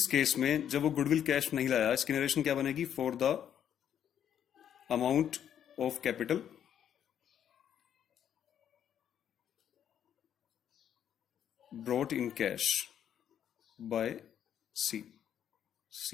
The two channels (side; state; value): right; quieter; 9.5 dB